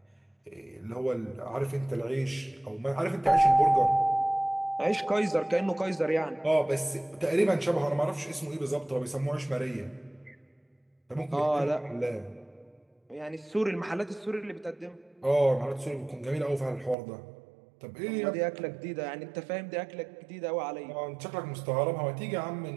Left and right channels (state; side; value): drops out; left; at 16.9 s